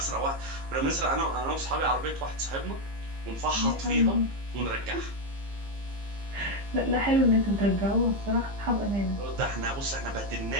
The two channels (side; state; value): left; late; 15 ms